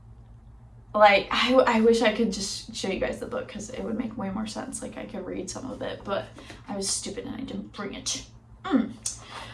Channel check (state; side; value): identical; both; correlation 1.00